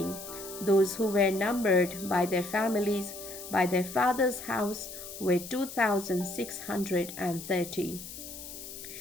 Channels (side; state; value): left; noise; hiss, 11 dB below the sound